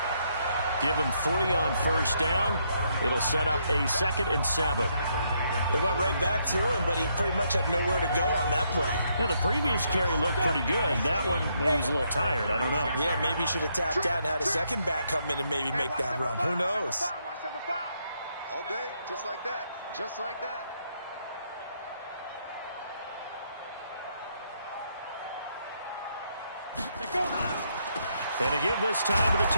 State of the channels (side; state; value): both; inverted; correlation -0.75